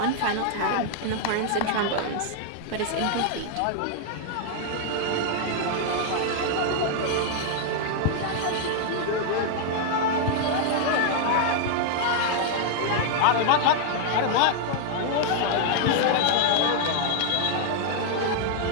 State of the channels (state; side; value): different; both; correlation 0.00